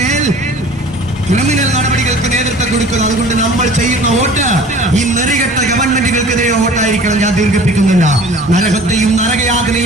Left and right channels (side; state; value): both; normal; correlation 0.46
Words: ക്രിമിനൽ നടപടികൾക്ക് നേതൃത്വം കൊടുക്കുന്നു. അതുകൊണ്ട് നമ്മൾ ചെയ്യുന്ന വോട്ട് ഈ നെറികെട്ട ഗവൺമെന്റുകൾക്കെതിരെ വോട്ടായിരിക്കണം. ഞാൻ ദീർഘിപ്പിക്കുന്നില്ല. നരകത്തെയും